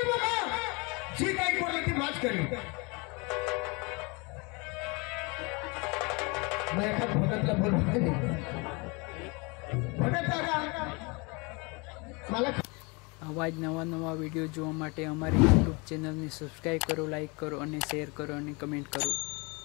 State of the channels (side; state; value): right; quieter; 28.9 dB